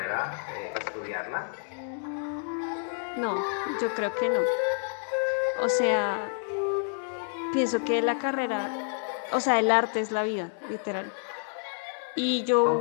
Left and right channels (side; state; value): right; silent; 59 dB below the other